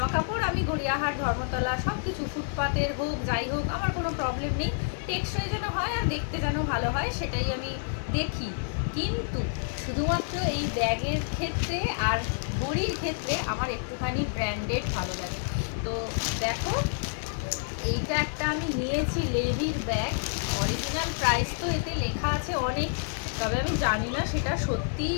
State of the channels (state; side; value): silent; right; digital silence